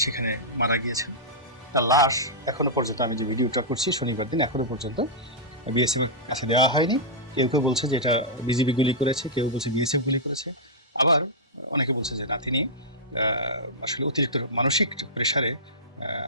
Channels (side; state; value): both; normal; correlation -0.12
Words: সেখানে মারা গিয়েছেন। তার লাশ এখনো পর্যন্ত, আমি যে ভিডিওটা করছি শনিবার দিন, এখনো পর্যন্ত বিএসএফ এর কাছে দেওয়া হয়নি। কেউ কেউ বলছে যে এটা বিজিবি গুলি করেছে, কেউ বলছে বিএসএফ গুলি করেছে, আবার অনেকে বলছে যে না, তিনি আসলে অতিরিক্ত মানসিক প্রেসারে